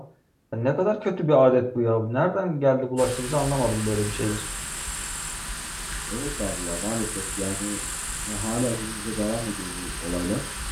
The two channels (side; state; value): both; identical; correlation 1.00